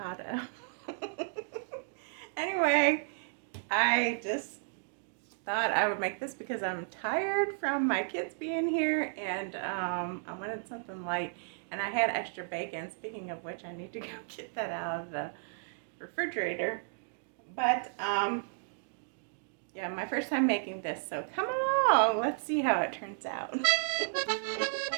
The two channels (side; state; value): left; silent; digital silence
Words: Anyway, I just thought I would make this because I'm tired from my kids being here and I wanted something light and I had extra bacon. Speaking of which, I need to go get that out of the refrigerator. But yeah, my first time making this, so come along. Let's see how it turns out.